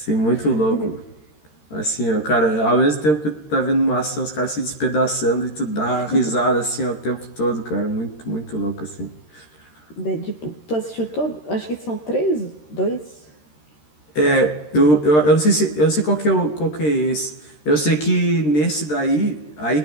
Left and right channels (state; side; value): late; right; 13 ms